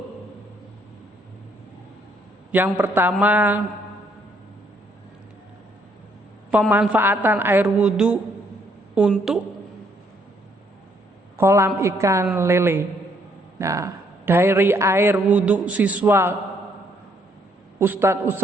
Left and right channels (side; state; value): both; normal; correlation 0.69